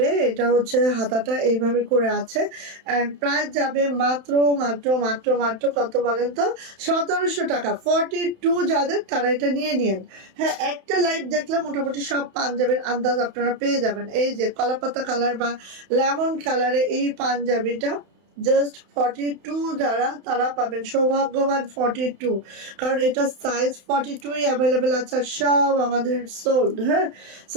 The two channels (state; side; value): late; left; 31 ms